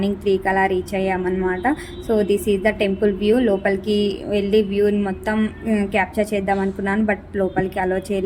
3కి అలా రీచ్ అయ్యామన్నమాట. So this is the temple view. లోపలికి వెళ్ళి వ్యూని మొత్తం క్యాప్చర్ చేద్దాం అనుకున్నాను, బట్ లోపలికి అలో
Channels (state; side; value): identical; both; correlation 1.00